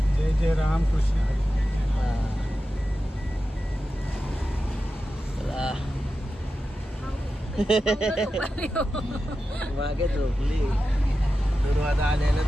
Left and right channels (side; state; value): both; normal; correlation 0.92